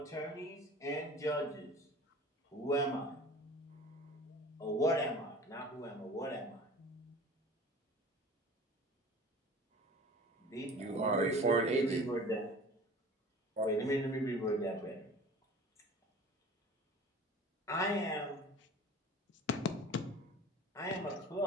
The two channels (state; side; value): normal; both; correlation 0.42